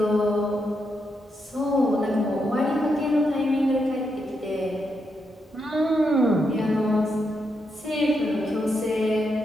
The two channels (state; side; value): normal; both; correlation 0.82